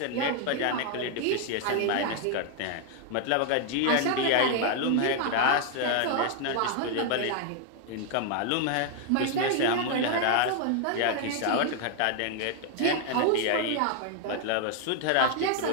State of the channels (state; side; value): different; both; correlation 0.00